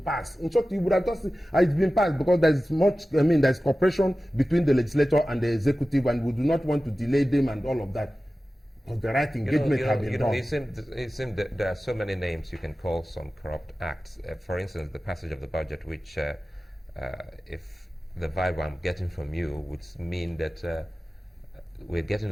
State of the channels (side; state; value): both; normal; correlation 0.95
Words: In short, you would have just it's been passed because there's there's cooperation between the legislature and the executive, and we do not want to delay them and all of that. But the right engagement has been done. It seems that there are so many names you can call some corrupt acts. For instance, the passage of the budget, which, if the vibe I'm getting from you, would mean that we're getting